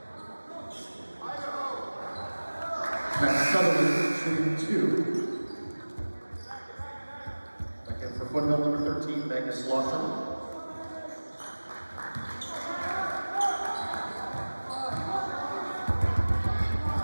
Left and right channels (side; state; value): both; inverted; correlation -1.00